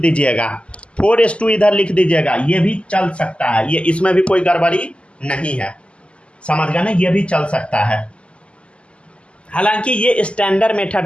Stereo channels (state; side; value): late; right; 0.055 ms